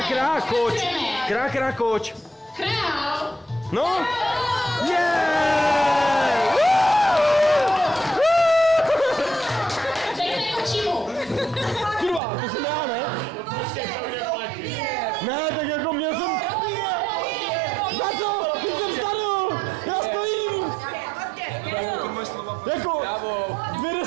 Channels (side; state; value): left; drops out; at 12.2 s